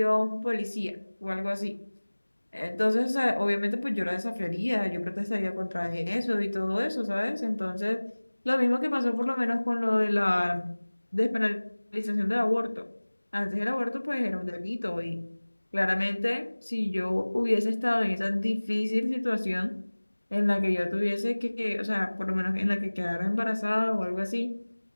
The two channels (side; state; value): both; inverted; correlation -1.00